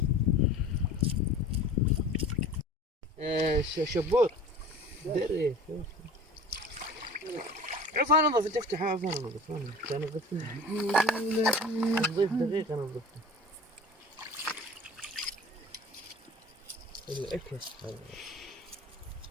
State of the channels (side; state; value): both; normal; correlation 0.40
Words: شبوط دري. عفوا انظف تفتحها. عفوا انظف انا نظفت نظيف دقيقه نظفته. الاكس